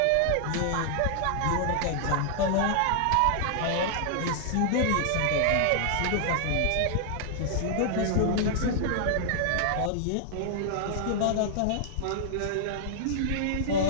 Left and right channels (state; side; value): different; both; correlation -0.01